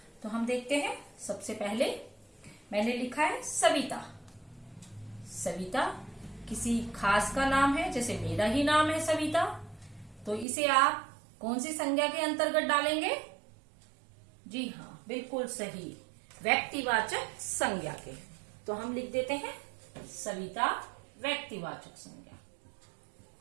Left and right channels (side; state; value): left; drops out; at 10.5 s